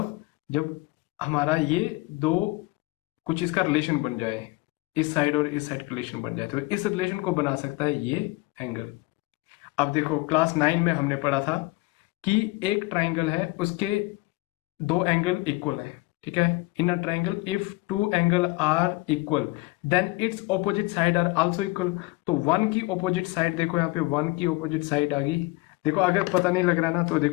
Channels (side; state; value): right; quieter; 22.4 dB